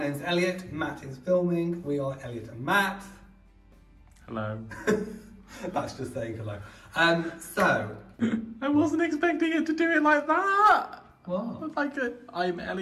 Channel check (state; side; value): identical; both; correlation 1.00